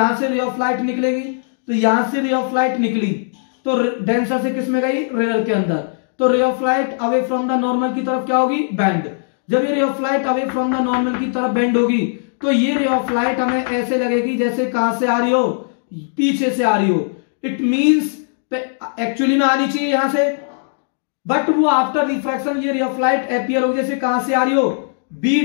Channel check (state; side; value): silent; right; digital silence